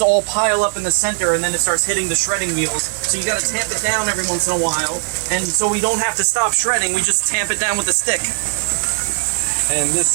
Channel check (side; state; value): left; silent; digital silence